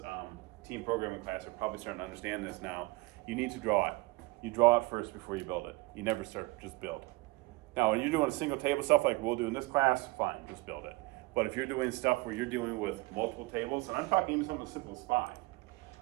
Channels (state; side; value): quieter; left; 22.9 dB